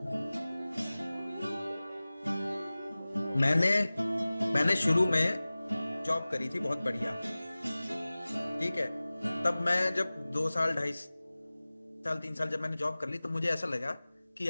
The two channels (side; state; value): both; inverted; correlation -0.98